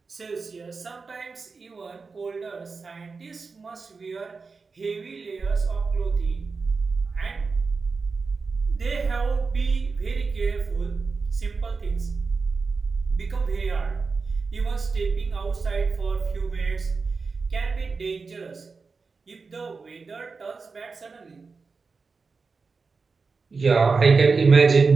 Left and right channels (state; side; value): quieter; left; 4.5 dB